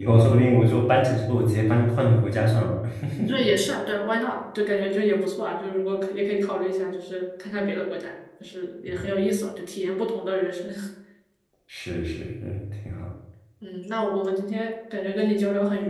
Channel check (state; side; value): identical; both; correlation 1.00